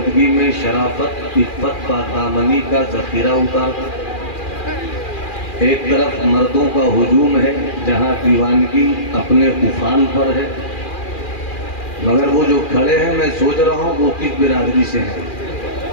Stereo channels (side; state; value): right; late; 2.4 ms